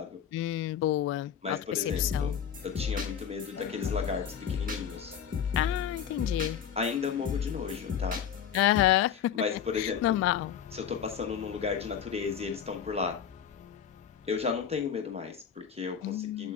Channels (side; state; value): right; quieter; 8.5 dB